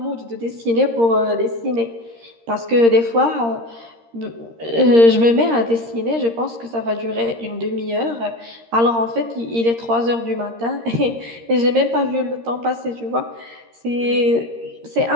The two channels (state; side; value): late; left; 13 ms